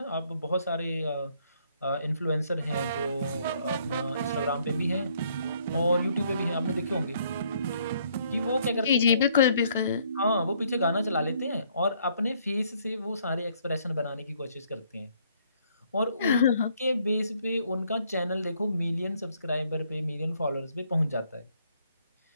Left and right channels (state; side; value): inverted; both; correlation -0.67